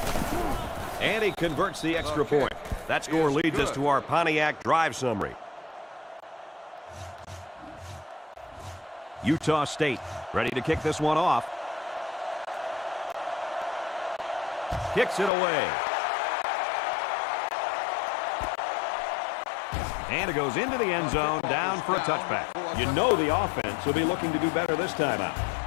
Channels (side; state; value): right; drops out; at 15.3 s